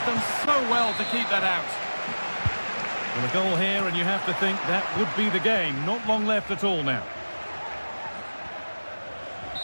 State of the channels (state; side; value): inverted; both; correlation -1.00